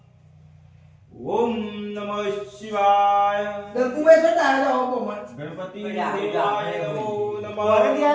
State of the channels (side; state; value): both; identical; correlation 1.00